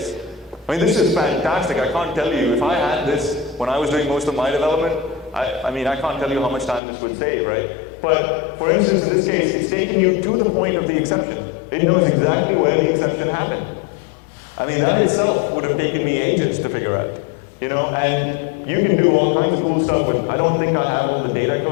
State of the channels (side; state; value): right; drops out; at 6.8 s